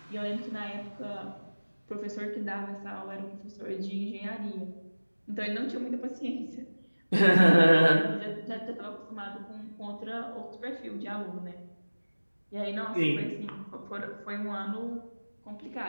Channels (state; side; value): inverted; both; correlation -1.00